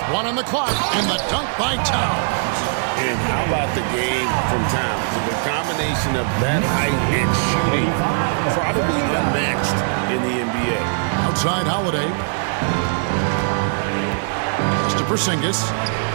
1 on the clock, and the dunk by Towns. And how about the game from Towns? The combination of that height and shooting, probably unmatched in the NBA. Outside Holiday. It's to Porzingis.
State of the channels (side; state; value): left; silent; digital silence